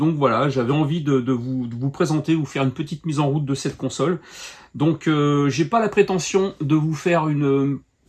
voilà, j'avais envie de vous présenter, vous faire une petite mise en route de cette console. Donc j'ai pas la prétention de vous faire une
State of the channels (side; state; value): both; identical; correlation 1.00